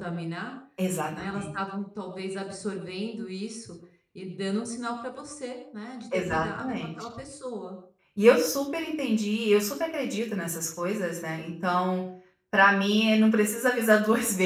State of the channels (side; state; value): both; identical; correlation 1.00